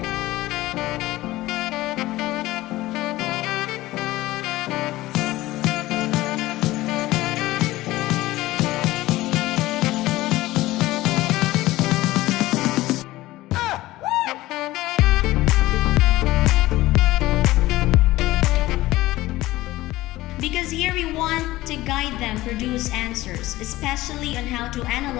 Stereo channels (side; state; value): right; quieter; 17.5 dB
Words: Because here we want to guide them produce answers, especially on how to